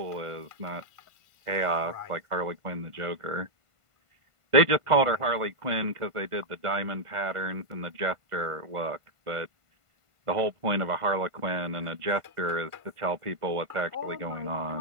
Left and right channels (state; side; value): late; left; 1.5 ms